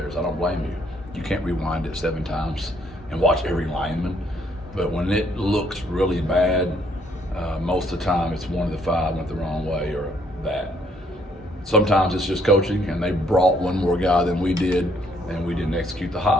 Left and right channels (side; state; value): both; normal; correlation 0.67